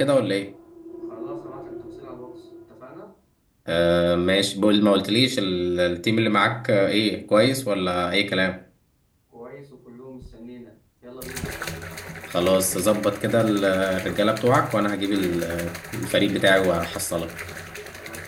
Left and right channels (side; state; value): both; identical; correlation 1.00